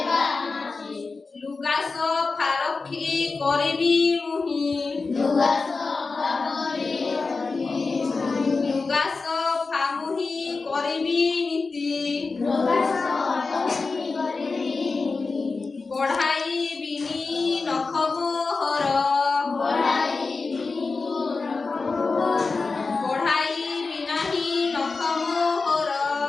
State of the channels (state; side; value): quieter; right; 4.1 dB